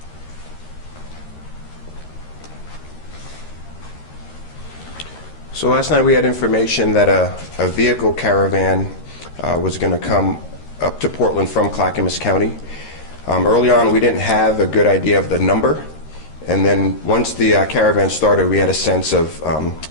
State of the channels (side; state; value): right; late; 13 ms